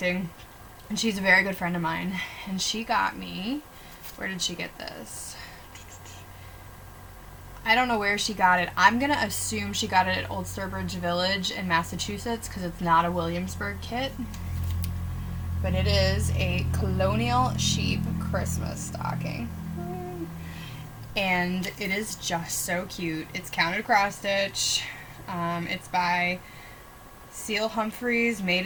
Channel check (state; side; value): identical; both; correlation 1.00